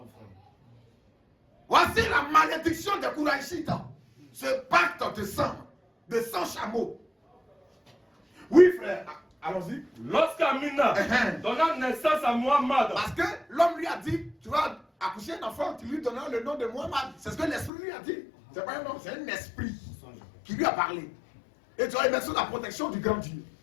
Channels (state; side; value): drops out; right; at 17.7 s